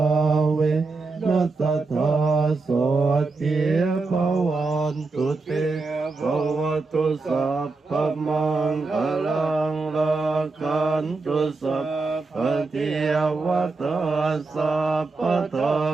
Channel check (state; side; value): quieter; left; 3.8 dB